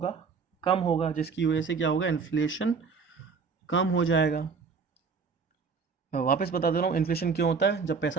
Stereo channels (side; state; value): left; quieter; 5.3 dB